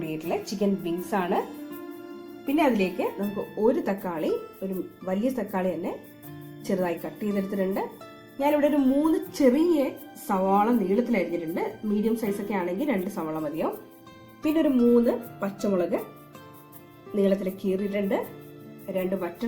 ചിക്കൻ വിങ്സ് ആണ്. പിന്നെ അതിലേക്ക് നമുക്ക് ഒരു തക്കാളി, ഒരു വലിയ തക്കാളി തന്നെ ചെറുതായി കട്ട് ചെയ്തെടുത്തിട്ടുണ്ട്. ഞാനിവിടെ ഒരു 3 ചെറിയ സവാള നീളത്തിൽ അരിഞ്ഞിട്ടുണ്ട്. മീഡിയം സൈസ് ഒക്കെ ആണെങ്കിൽ 2 സവാള മതിയാവും. പിന്നെ ഒരു 3 പച്ചമുളക് നീളത്തിൽ കീറിയിട്ടുണ്ട്. 2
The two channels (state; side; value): identical; both; correlation 1.00